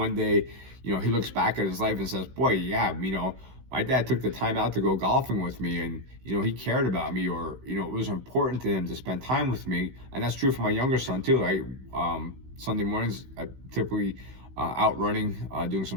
day, you know, he looks back at his life and says, boy, yeah, you know, my dad took the time out to go golfing with me, and, you know, he cared about me, or, you know, it was important to him to spend time with me. And that's true for my younger son too, right? Sunday mornings, I typically out running, doing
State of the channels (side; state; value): left; late; 16 ms